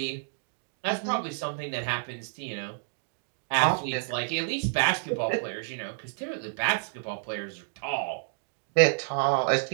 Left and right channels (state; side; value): silent; left; digital silence